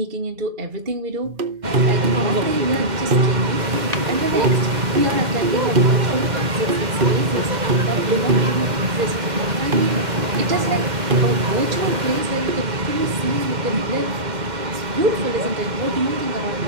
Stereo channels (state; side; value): late; left; 2.1 ms